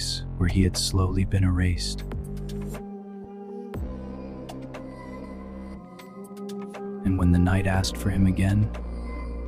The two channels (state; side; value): identical; both; correlation 1.00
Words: where he had slowly been erased. And when the night asked for him again,